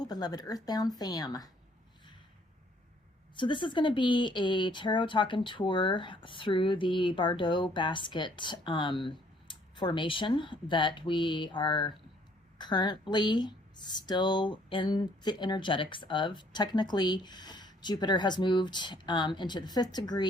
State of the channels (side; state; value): both; normal; correlation 0.63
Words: beloved Earthbound fam. So this is going to be a tarot talking tour through the Barbault basket formation that we are currently still in the energetics of. Technically, Jupiter has moved into the 5th